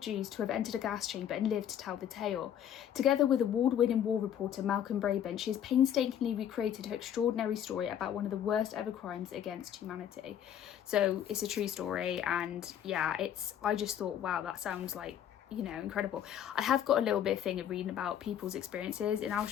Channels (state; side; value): quieter; right; 9.9 dB